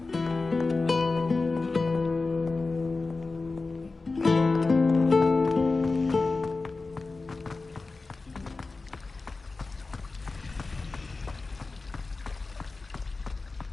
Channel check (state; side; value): quieter; right; 3.7 dB